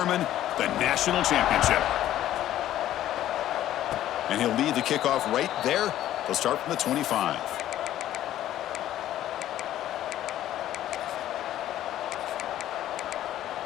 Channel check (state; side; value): quieter; right; 12.8 dB